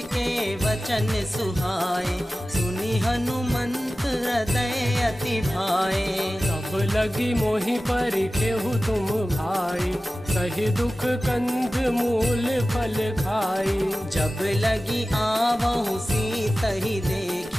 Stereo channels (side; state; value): both; normal; correlation 0.96